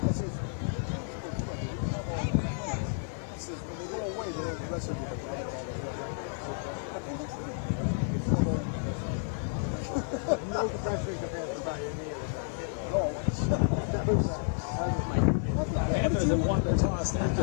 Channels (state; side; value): silent; right; digital silence